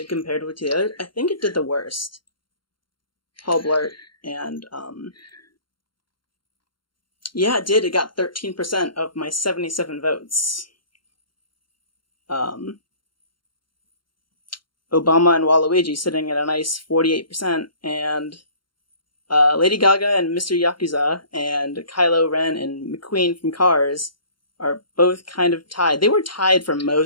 compared with the others. I think it did the worst. Paul Blart and, yeah, it did. It got 13% of my 77 votes. Obama and Waluigi sitting at a nice 48%, and Lady Gaga and Mr. Yakuza and Kylo Ren and McQueen from Cars are both kind of tied. They were tied for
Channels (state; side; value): late; right; 0.72 ms